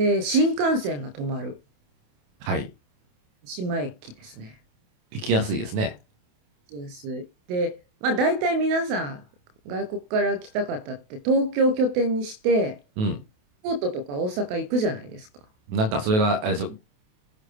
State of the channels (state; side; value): late; left; 28 ms